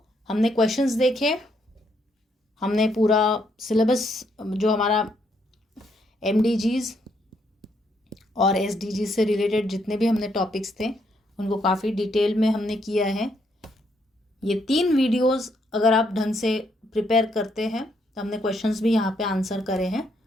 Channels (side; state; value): both; normal; correlation 0.74